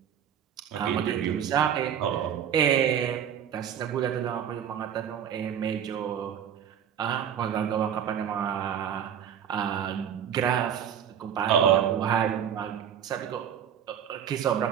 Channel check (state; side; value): quieter; left; 9.0 dB